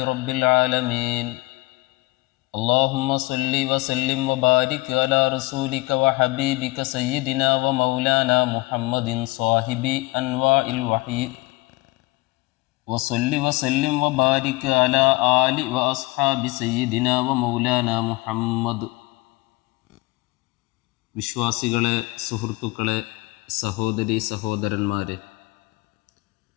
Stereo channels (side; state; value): right; quieter; 22.4 dB